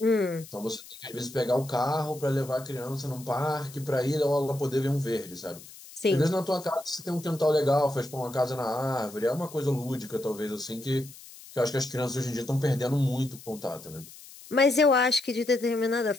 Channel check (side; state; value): left; noise; hiss, 18 dB below the sound